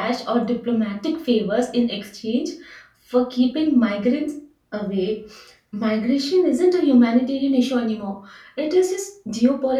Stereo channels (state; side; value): identical; both; correlation 1.00